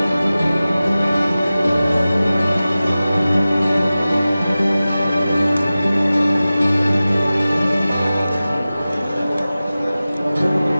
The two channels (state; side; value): inverted; both; correlation -0.96